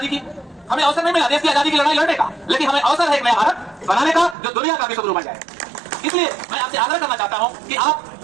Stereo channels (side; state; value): left; drops out; at 4.4 s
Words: की, हमें अवसर नहीं मिला देश की आजादी की लड़ाई लड़ने का, लेकिन हमें अवसर है एक नया भारत बनाने का जो दुनिया का विश्व गुरु बन जाए। इसलिए मैं आपसे आग्रह करना चाहता हूं कि आप